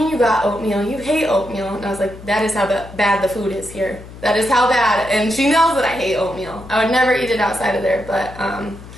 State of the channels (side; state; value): left; noise; hum, 16 dB below the sound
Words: you got oatmeal? You hate oatmeal. And I was like, that is how bad the food is here. That is how bad. And she knows that I hate oatmeal. I would never eat it outside of there. But